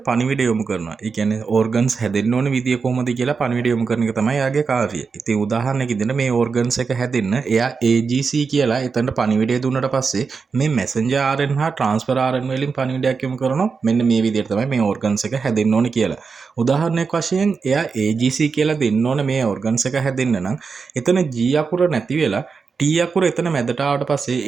පණිවිඩ යොමු කරනවා. ඒ කියන්නේ ඕර්ගන්ස් හැදෙන්න ඕන විදිය කොහොමද කියලා පණිවිඩ යොමු කරන එක තමයි යාගේ කාර්යය. ඉතින් උදාහරණයක් ඉදින්න මේ ඕර්ගන්ස් එක හැදෙන්න එයා AGC කියලා එතනට පණිවිඩය දුන්නට පස්සේ මේ messenger RNA හා transfer RNA වලින් පණිවිඩයක් යොමු කරනවා. මෙන්න මේ විදිහට තමයි මේ ඕර්ගන්ස් එක හැදෙන්න ඕන කියලා. උදාහරණයක් වශයෙන් එයා AGC කියලා දෙන්න ඕන මේ ඕර්ගන්ස් එක හැදෙන්න නම් එතන G අකුර නැති වෙලා T අකුර එතන මැදට ආවට පස්සේ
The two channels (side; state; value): left; quieter; 5.1 dB